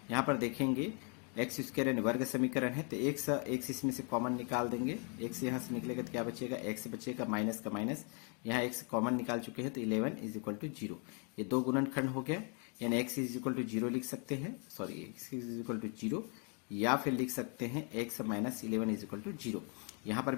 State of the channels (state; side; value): quieter; right; 36.8 dB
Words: यहाँ पर देखेंगे एक्स स्क्वायर यानी वर्ग समीकरण है, तो एक इसमें से कॉमन निकाल देंगे। एक्स यहाँ से निकलेगा तो क्या बचेगा, एक्स बचेगा, माइनस का माइनस, यहाँ एक्स कॉमन निकाल चुके हैं तो 11 इज इक्वल टू 0। ये दो गुणनखंड हो गया, यानी एक्स इज इक्वल टू 0 लिख सकते हैं, sorry x is equal to 0, या फिर लिख सकते हैं x minus 11 is equal to 0। यहाँ पर